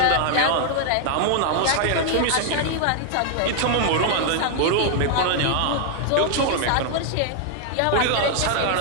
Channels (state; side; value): different; both; correlation 0.00